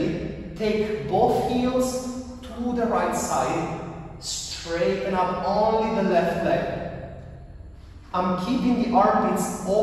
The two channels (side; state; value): both; identical; correlation 1.00